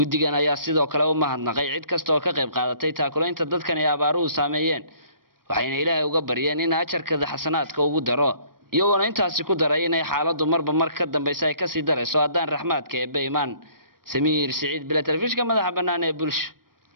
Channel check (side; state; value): left; late; 0.93 ms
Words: ayaa sidoo kale u mahadnaqay cid kasta oo ka qayb qaadatay taakulaynta dadkan ay abaaruhu saameeyeen waxayna ilaahay uga baryeen in ajarkada xasanaadka ugu daro iyagoona intaasi ku daray inay xaaladdu marba mar ka dambaysa ay kasii darayso haddaan raxmaadka eebbe imaan samiir siciid bila telefishinka madaxa bannaan ee bulsho